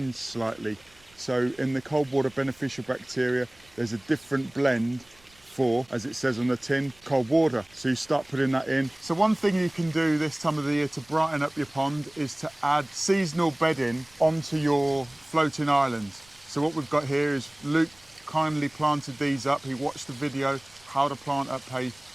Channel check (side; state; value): right; noise; rumble, 30 dB below the sound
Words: slightly. So in the cold water beneficial bacteria, there's a different blend for, as it says on the tin, cold water. So you start putting that in. So one thing you can do this time of the year to brighten up your pond is to add seasonal bedding onto your floating islands. So what we've got here is Luke kindly planted these up. He watched the video how to plant up a